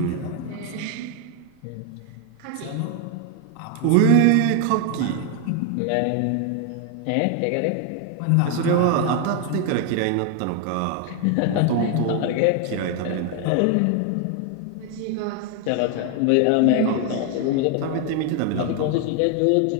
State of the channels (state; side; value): different; both; correlation 0.01